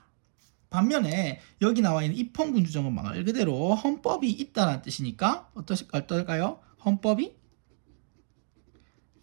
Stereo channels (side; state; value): left; silent; digital silence